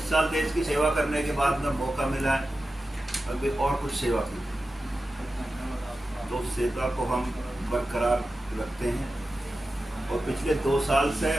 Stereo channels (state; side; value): normal; both; correlation 0.93